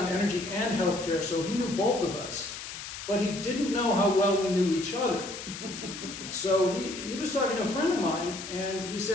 energy and healthcare, so he knew both of us. But he didn't know how well we knew each other. So he was talking to a friend of mine, and he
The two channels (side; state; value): left; noise; hiss, 9 dB below the sound